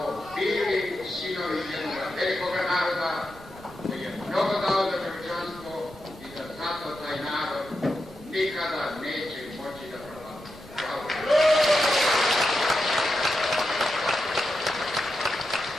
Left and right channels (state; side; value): noise; right; rumble, 22 dB below the sound